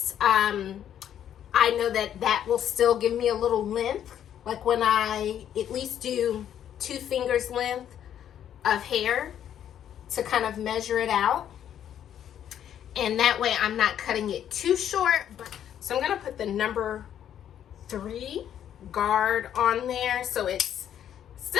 I know that will still give me a little length, like when I at least do 2 fingers length of hair to kind of measure it out, and that way I'm not cutting it too short. So I'm gonna put the number 3 guard on there, so it's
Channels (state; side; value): quieter; right; 10.0 dB